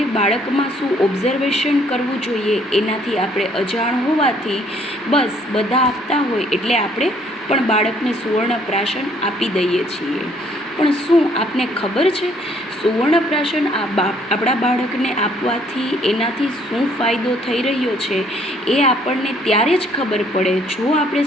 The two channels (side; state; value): both; normal; correlation 0.63